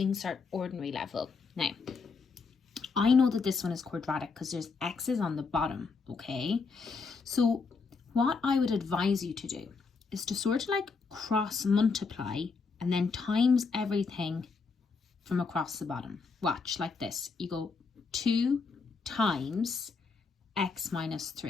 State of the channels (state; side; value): quieter; right; 4.7 dB